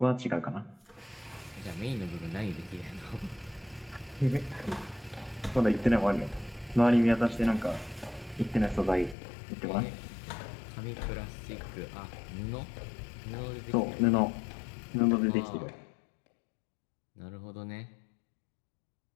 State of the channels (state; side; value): drops out; right; at 9.2 s